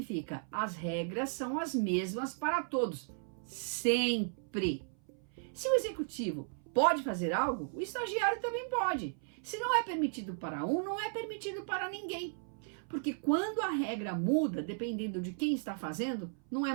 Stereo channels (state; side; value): silent; left; 54 dB below the other